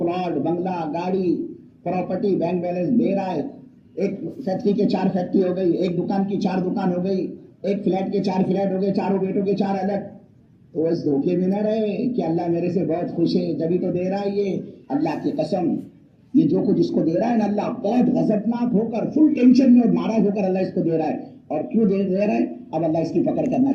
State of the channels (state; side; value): identical; both; correlation 1.00